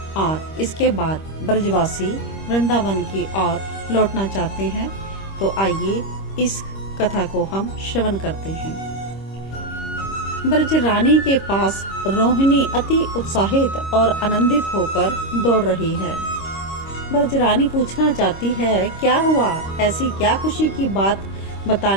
और इसके बाद ब्रजवासी वृंदावन की ओर लौटना चाहते हैं। तो आइए इस कथा को हम श्रवण करते हैं। ब्रज रानी के पास रोहिणी अति उत्साहित और आनंदित होकर दौड़ रही है। ब्रज रानी पूछना चाहती है, क्या हुआ, ऐसी क्या खुशी की बात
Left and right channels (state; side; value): late; right; 26 ms